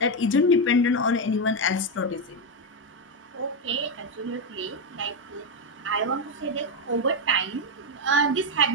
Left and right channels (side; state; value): both; normal; correlation 0.06